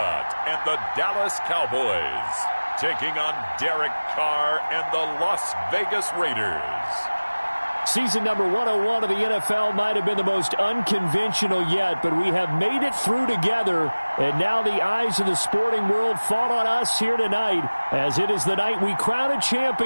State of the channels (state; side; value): inverted; both; correlation -1.00